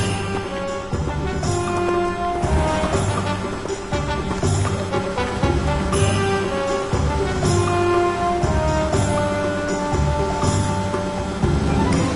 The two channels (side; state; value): both; identical; correlation 1.00